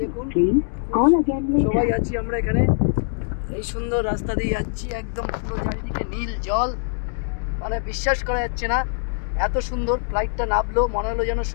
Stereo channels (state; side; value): silent; right; digital silence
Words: দেখুন সবাই আছি আমরা এখানে। এই সুন্দর রাস্তা দিয়ে যাচ্ছি, একদম পুরো চারিদিকে নীল জল, মানে বিশ্বাস করা যাচ্ছে না এত সুন্দর। ফ্লাইটটা নামলো মনে হলো যেন